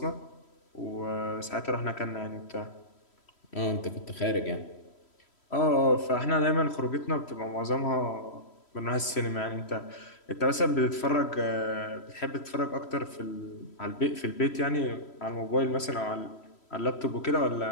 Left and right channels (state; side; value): late; right; 3.1 ms